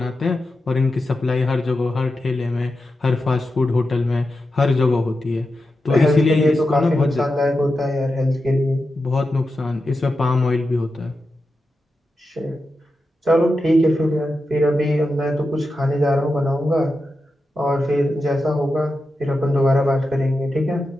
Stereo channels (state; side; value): normal; both; correlation 0.90